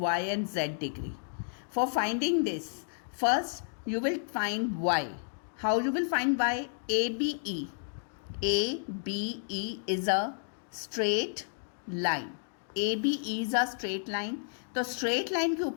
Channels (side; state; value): right; silent; digital silence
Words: and z degree. For finding this, first you will find y. How you will find y? ABE. ABE is a straight line. ABE is a straight line. तो straight line के